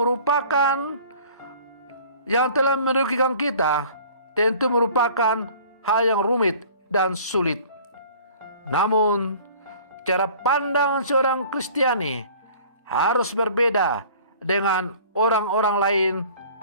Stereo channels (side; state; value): both; inverted; correlation -0.49